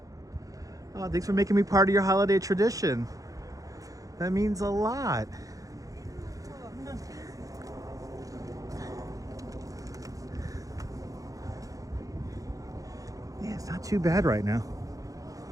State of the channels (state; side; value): late; left; 0.17 ms